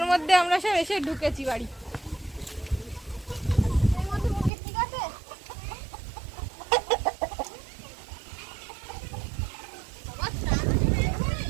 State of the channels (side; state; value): left; drops out; at 4.5 s